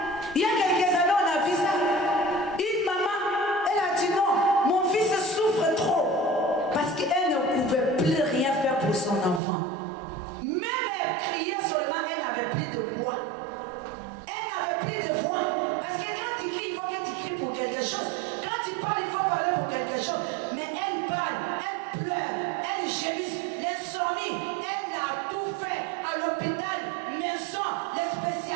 Il y a quelques années, on a vu ça. Une maman, elle a dit non, mon fils souffre trop. Parce qu'elle ne pouvait plus rien faire pour son enfant. Même elle criait seulement, elle n'avait plus de voix. Elle n'avait plus de voix. Parce que quand tu cries, il faut que tu cries pour quelque chose. Quand tu parles, il faut parler pour quelque chose. Mais elle parle, elle pleure, elle gémisse, l'insomnie. Elle a tout fait à l'hôpital, maison, les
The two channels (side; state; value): left; drops out; at 9.4 s